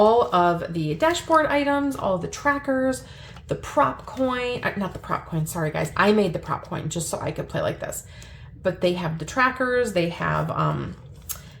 of the dashboard items, all of the trackers, the prop coin, not the prop coin, sorry guys. I made the prop coin just so I could play like this. But they have the trackers, they have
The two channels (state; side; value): identical; both; correlation 1.00